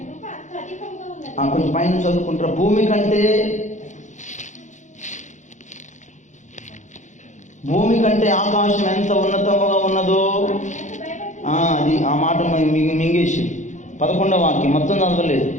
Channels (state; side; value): late; right; 0.35 ms